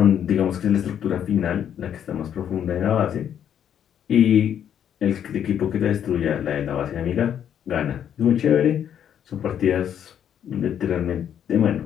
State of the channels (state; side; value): quieter; right; 9.3 dB